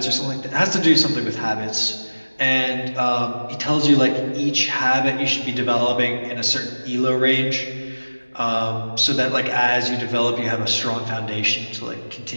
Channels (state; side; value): inverted; both; correlation -1.00